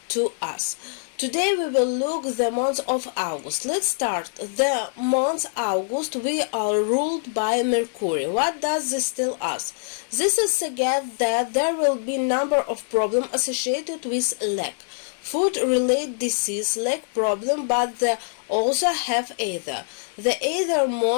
to us? Today we will look the month of August. Let's start. The month August we are ruled by Mercury. What does this tell us? This is suggests that there will be number of problems associated with lack. Food-related disease lack problem, but they also have ether. The ether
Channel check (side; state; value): right; silent; 63 dB below the other